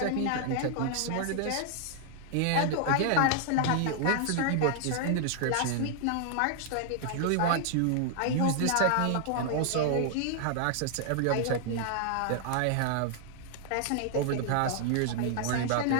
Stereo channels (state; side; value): different; both; correlation 0.00